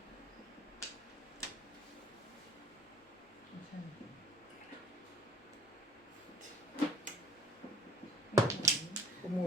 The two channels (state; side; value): normal; both; correlation 0.52